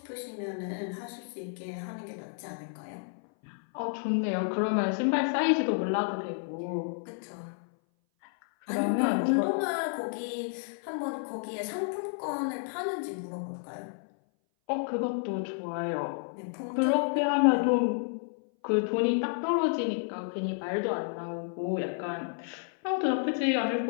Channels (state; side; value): silent; right; 57 dB below the other